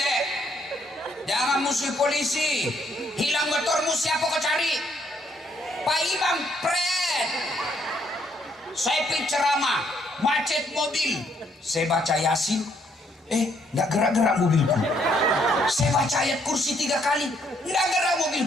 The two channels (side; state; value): both; normal; correlation 0.70